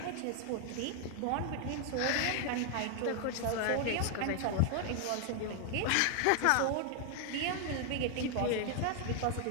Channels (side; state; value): both; different; correlation 0.00